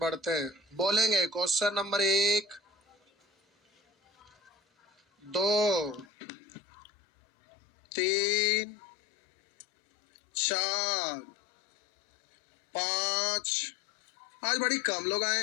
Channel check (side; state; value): right; drops out; at 6.1 s